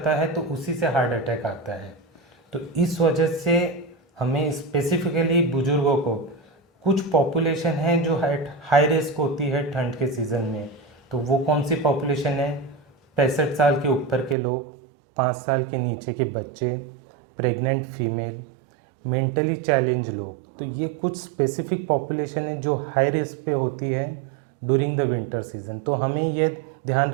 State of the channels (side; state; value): left; drops out; at 14.4 s